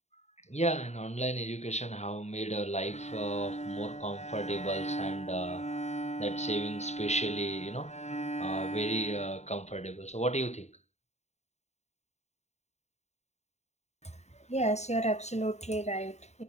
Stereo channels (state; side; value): late; right; 0.32 ms